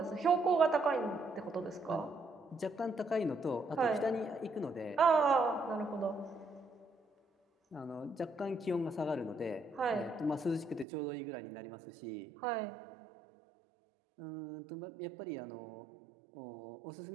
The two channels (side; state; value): left; drops out; at 10.9 s